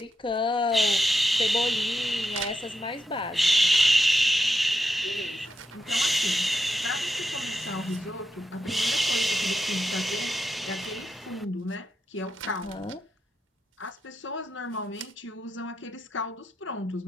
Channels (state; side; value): normal; both; correlation 0.84